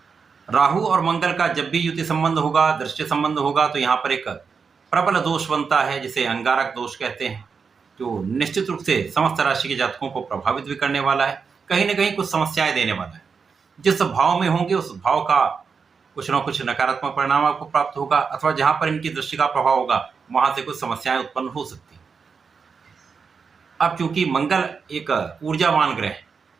राहु और मंगल का जब भी युति संबंध होगा, दृष्टि संबंध होगा, तो यहाँ पर एक प्रबल दोष बनता है जिसे अंगारक दोष कहते हैं, जो निश्चित रूप से समस्त राशि के जातकों को प्रभावित भी करने वाला है, कहीं ना कहीं कुछ समस्याएं देने वाला है। जिस भाव में होंगे उस भाव का कुछ ना कुछ नकारात्मक परिणाम आपको प्राप्त होगा, अथवा जहां पर इनकी दृष्टि का प्रभाव होगा वहां से कुछ समस्याएं उत्पन्न हो सकती हैं। अब चूंकि मंगल एक ऊर्जावान ग्रह है,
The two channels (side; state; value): left; quieter; 5.6 dB